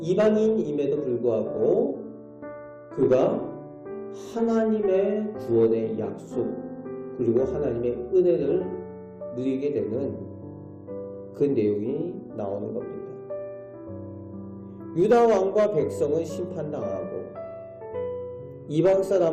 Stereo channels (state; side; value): identical; both; correlation 1.00